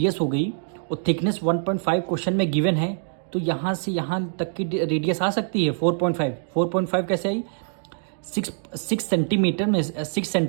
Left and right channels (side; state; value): left; silent; digital silence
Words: हो गई और थिकनेस 1.5 क्वेश्चन में गिवन है, तो यहाँ से यहाँ तक की रेडियस आ सकती है 4.5। 4.5 कैसे आई, 6 सेंटीमीटर में 6